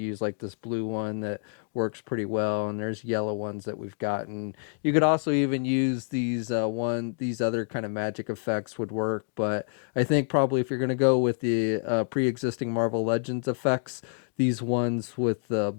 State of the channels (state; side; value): silent; right; digital silence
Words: like this blue one that works pretty well, and there's yellow ones that we've gotten. You could also even use these other kind of magic effects would work, but I think probably if you're going to go with the pre-existing Marvel Legends effects, these ones with the